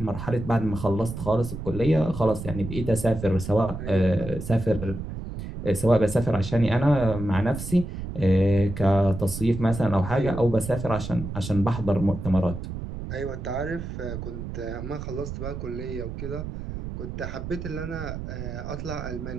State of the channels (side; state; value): right; noise; rumble, 7 dB below the sound